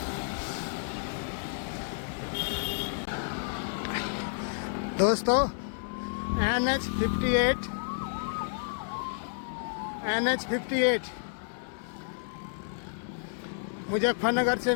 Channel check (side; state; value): right; silent; digital silence